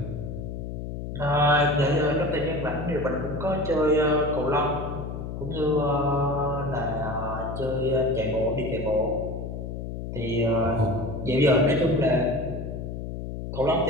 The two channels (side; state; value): left; noise; hum, 6 dB below the sound